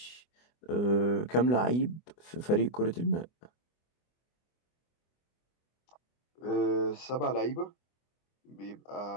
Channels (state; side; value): late; right; 24 ms